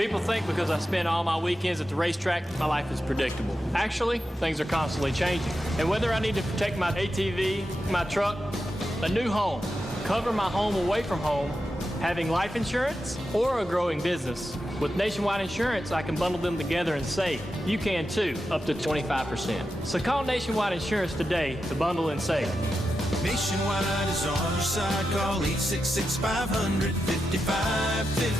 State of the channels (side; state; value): both; normal; correlation 0.89